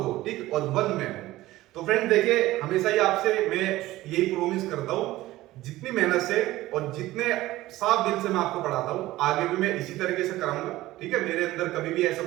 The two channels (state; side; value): quieter; left; 16.9 dB